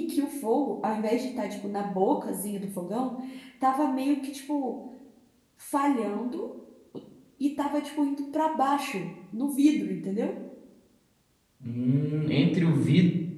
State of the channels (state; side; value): identical; both; correlation 1.00